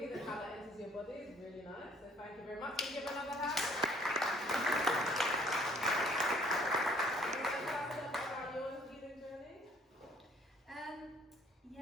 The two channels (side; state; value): both; normal; correlation 0.59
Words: and how that enters your body is really nice. So thank you very much. Can you give another hand? About your healing journey?